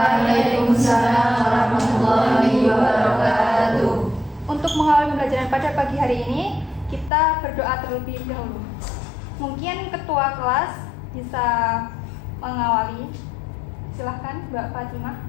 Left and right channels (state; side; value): drops out; right; at 7.1 s